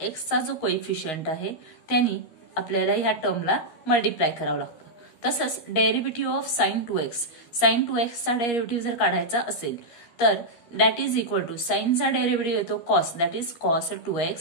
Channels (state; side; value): late; right; 13 ms